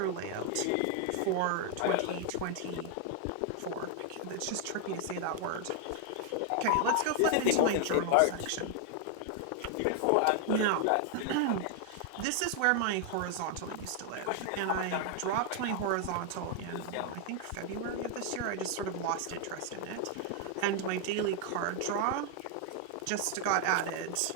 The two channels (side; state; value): both; different; correlation 0.00